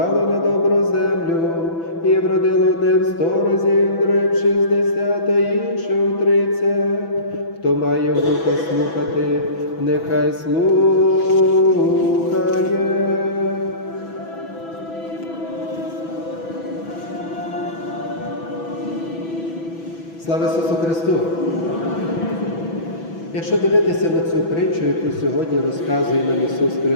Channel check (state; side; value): late; right; 6.0 ms